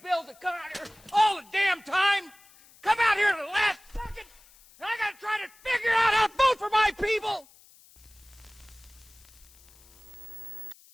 bills that come out here all the damn time come out here at the last second, and I gotta try to figure out how to vote for my people.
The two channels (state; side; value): noise; left; hiss, 26 dB below the sound